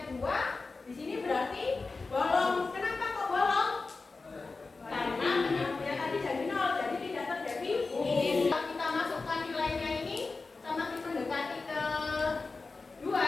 2? Di sini berarti bolong. Kenapa kok bolong? Karena penyebutnya tadi jadi 0, jadi tidak terdefinisi. Kalau kita masukkan nilainya ini semakin mendekati ke 2,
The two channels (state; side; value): quieter; right; 3.9 dB